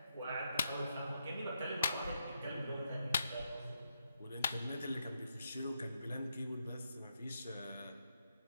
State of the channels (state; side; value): inverted; both; correlation -0.82